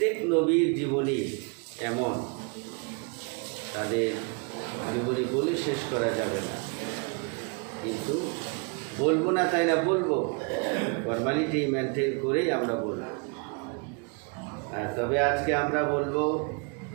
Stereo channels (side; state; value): left; quieter; 34.8 dB